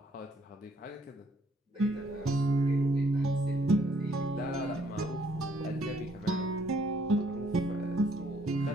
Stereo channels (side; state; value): both; normal; correlation 0.67